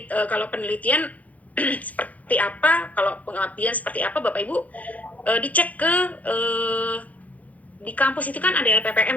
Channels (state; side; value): late; right; 0.073 ms